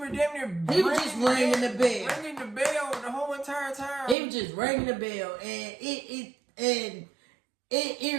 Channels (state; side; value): drops out; left; at 4.2 s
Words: there damn near he was just ringing the bell. Ringing the bell the whole entire time. He was just ringing the bell and it